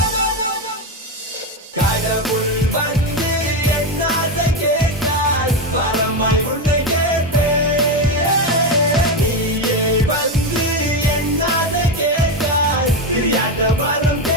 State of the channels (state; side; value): normal; both; correlation 0.12